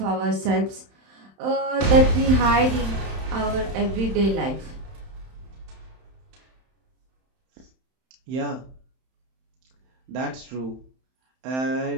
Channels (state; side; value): late; left; 31 ms